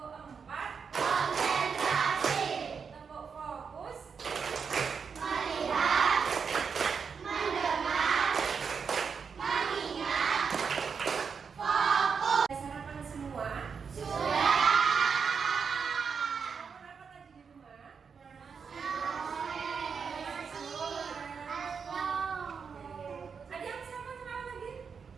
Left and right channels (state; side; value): quieter; left; 6.0 dB